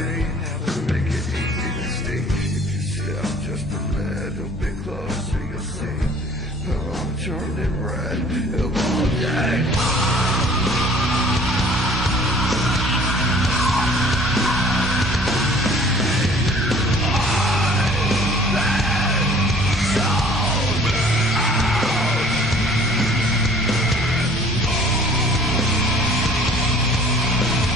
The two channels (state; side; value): normal; both; correlation 0.52